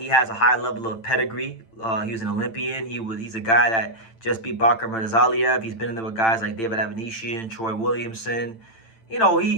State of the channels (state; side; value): late; right; 8.9 ms